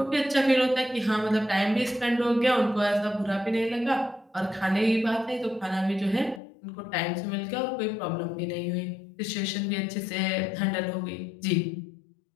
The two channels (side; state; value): right; drops out; at 6.4 s